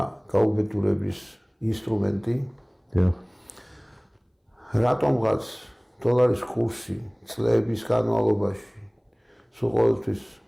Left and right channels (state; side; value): identical; both; correlation 1.00